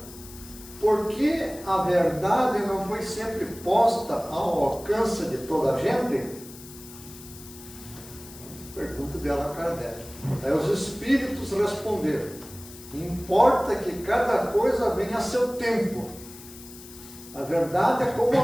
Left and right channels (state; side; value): noise; left; hiss, 17 dB below the sound